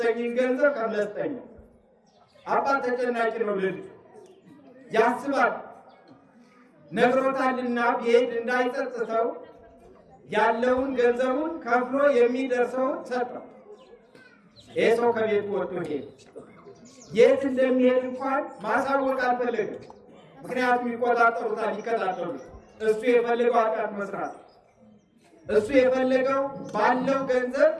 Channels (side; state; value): both; identical; correlation 1.00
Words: ገንዘብ ከፍለህ ስጠኝ። አባት ተጨናቂ ነው። ልጅ ያስባል፣ ነግሮታልና ቢሄድ እንዳይጸጽተው ያለውን ገንዘቡን ከፍሎ የሚደርሰውን ሰጠው። ይህ ሰው ከቤቱ ወጥቶ ሄደ። የት እንደሚሄድ እንኳን ማሳወቅ አልፈለገም። ምክንያቱም ይቆጣጠሩታል፣ ይከታተሉት። እሱ የፈለገው ኃጢአት መስራት፣ እሱ የፈለገው ባለው ገንዘብ